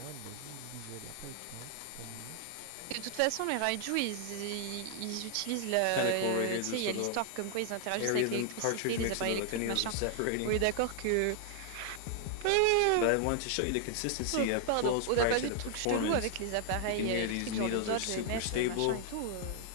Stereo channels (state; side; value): different; both; correlation 0.00